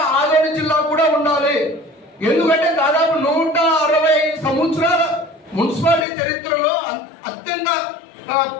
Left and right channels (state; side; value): drops out; right; at 6.1 s